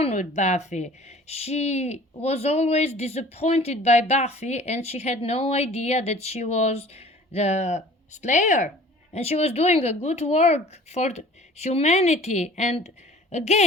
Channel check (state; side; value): normal; both; correlation 0.47